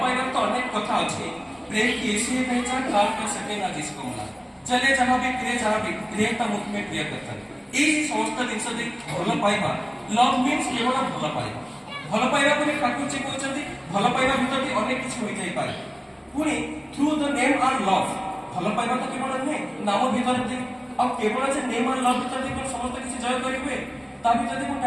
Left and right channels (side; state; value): both; identical; correlation 1.00